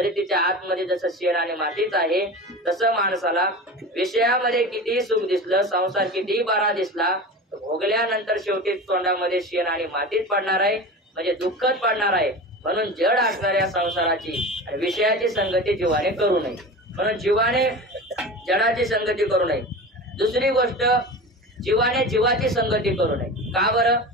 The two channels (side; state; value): both; normal; correlation 0.31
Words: तिच्या आतमध्ये जसं शेण आणि मातीच आहे, तसं माणसाला विषयामध्ये कितीही सुख दिसलं, संसार कितीही बरा दिसला, भोगल्यानंतर शेवटी तोंडामध्ये शेण आणि मातीच पडणार आहे, म्हणजे दुःखच पडणार आहे. म्हणून जड असणाऱ्या संसाराची आणि विषयाची संगती जीवाने करू नये. म्हणून जीवाने जडाची संगती करू नये. दुसरी गोष्ट, जीवाने जीवाची संगती करू नये. का बरं?